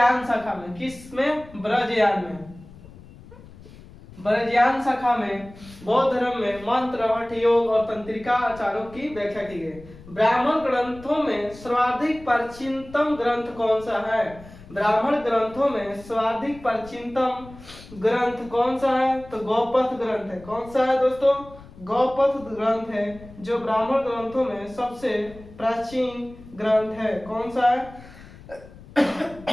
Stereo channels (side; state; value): left; noise; rumble, 20 dB below the sound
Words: शाखा में। किस में? ब्रजयान में। ब्रजयान शाखा में बौद्ध धर्म में मंत्र, हठ योग और तंत्रिका आचारों की व्याख्या की गई। ब्राह्मण ग्रंथों में सर्वाधिक प्राचीनतम ग्रंथ कौन सा है? ब्राह्मण ग्रंथों में सर्वाधिक प्राचीनतम ग्रंथ कौन सा है? तो गौपथ ग्रंथ है। कौन सा है दोस्तों? गौपथ ग्रंथ है जो ब्राह्मण ग्रंथों में सबसे प्राचीन ग्रंथ है। कौन सा है?